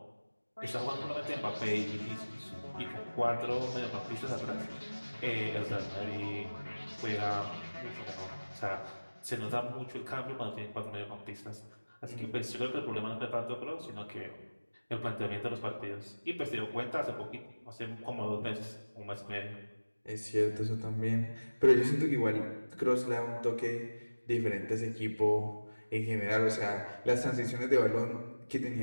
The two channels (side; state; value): both; inverted; correlation -1.00